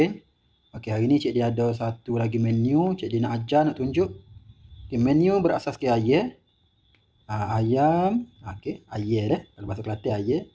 Okey, hari ni Cik Din ada satu lagi menu. Cik Din nak ajar, nak tunjuk. Okey, menu berasaskan ayam. Ayam, okey, ayam dah. Kalau bahasa Kelantan ayam,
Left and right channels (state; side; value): identical; both; correlation 1.00